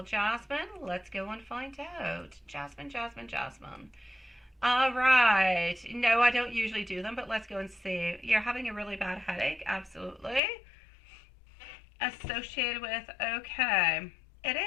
Jasmine? Let's go and find out. Jasmine, Jasmine, Jasmine. All right. No, I don't usually do them, but let's go and see. You're having a really bad headache. Absolutely. Associated with, okay. It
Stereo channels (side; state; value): right; drops out; at 10.4 s